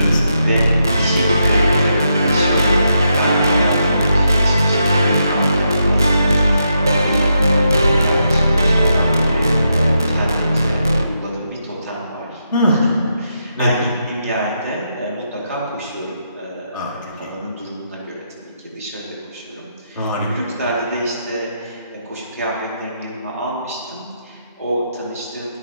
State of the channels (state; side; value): inverted; both; correlation -0.82